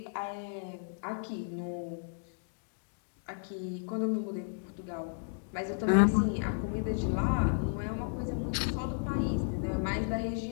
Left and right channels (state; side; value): silent; right; digital silence